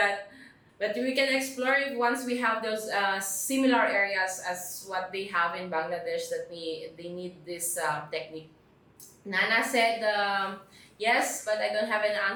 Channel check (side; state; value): both; identical; correlation 1.00